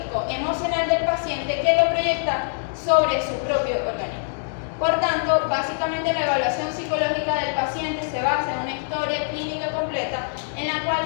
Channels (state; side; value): silent; right; digital silence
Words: emocional del paciente que lo proyecta sobre su propio organismo. Por tanto, básicamente la evaluación psicológica del paciente se basa en una historia clínica completa en la cual